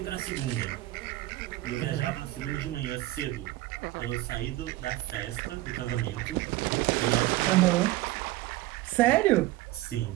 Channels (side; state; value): left; quieter; 17.1 dB